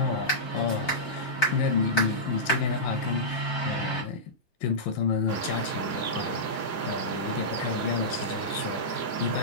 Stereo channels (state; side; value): late; right; 5.8 ms